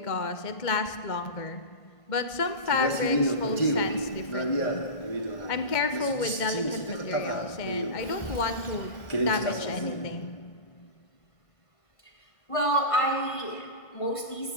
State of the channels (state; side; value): late; right; 1.6 ms